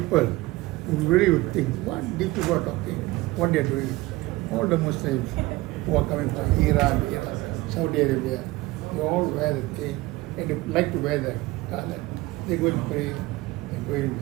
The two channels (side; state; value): left; quieter; 20.0 dB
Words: who really would think, what these people are talking, what they are doing. All the Muslims who are coming from Iran, Iraq, Saudi Arabia, they all wear the thing and they like to wear the color. They go and pray, they go in.